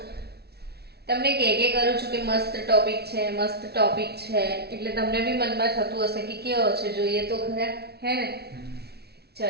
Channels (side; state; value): left; late; 0.47 ms